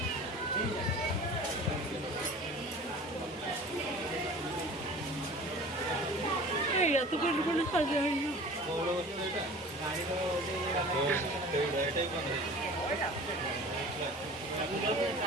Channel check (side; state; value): both; normal; correlation 0.41